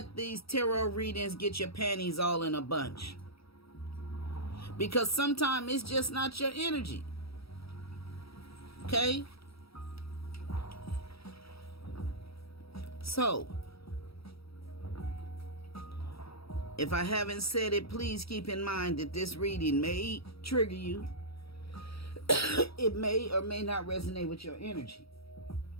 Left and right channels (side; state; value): right; late; 0.76 ms